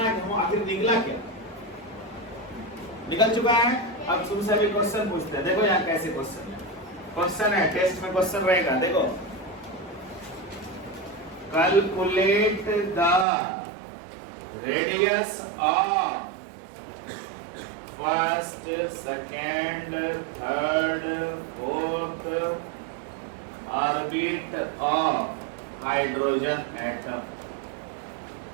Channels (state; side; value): drops out; left; at 13.2 s